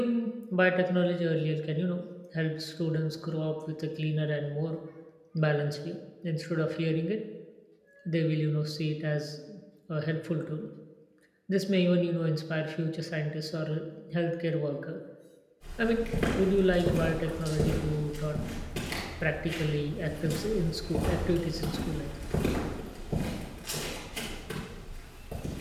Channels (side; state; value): both; identical; correlation 1.00